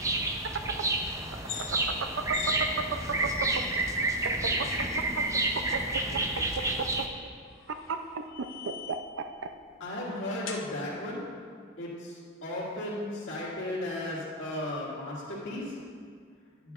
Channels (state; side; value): normal; both; correlation -0.09